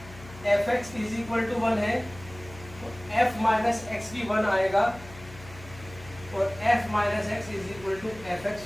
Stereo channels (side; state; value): left; noise; hum, 18 dB below the sound